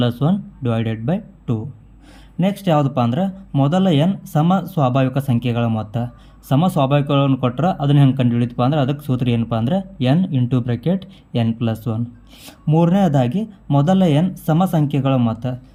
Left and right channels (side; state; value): both; identical; correlation 1.00